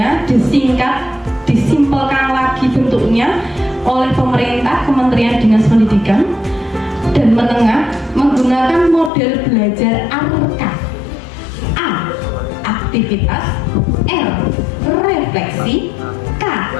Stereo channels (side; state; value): right; drops out; at 9.1 s